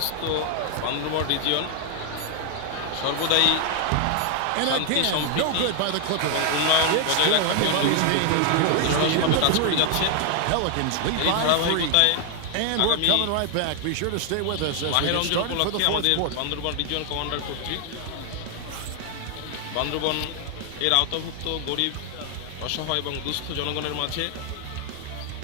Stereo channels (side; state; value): both; different; correlation 0.00